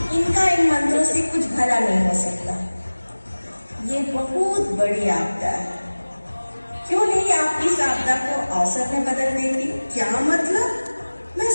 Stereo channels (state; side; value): inverted; both; correlation -1.00